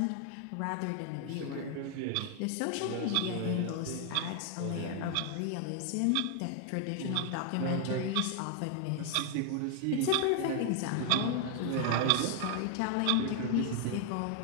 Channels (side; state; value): both; different; correlation 0.00